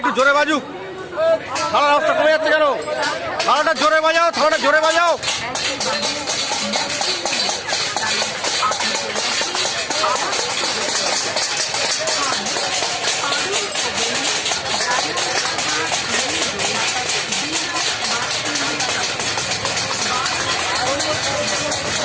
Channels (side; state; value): both; identical; correlation 1.00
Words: জোরে বাজুক। হাওড়ার রাস্তা কমে যাচ্ছে কেন? হাওড়াটা জোরে বাজাও, হাওড়াটা জোরে বাজাও।